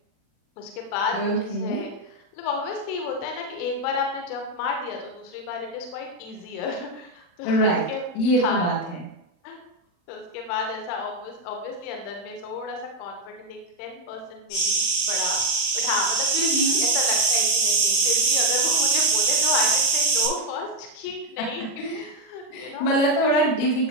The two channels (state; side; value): late; right; 40 ms